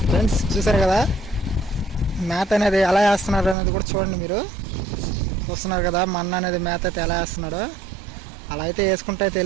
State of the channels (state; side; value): drops out; left; at 3.6 s